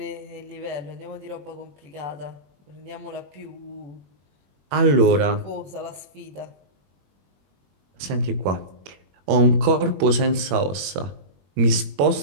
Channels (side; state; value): left; late; 21 ms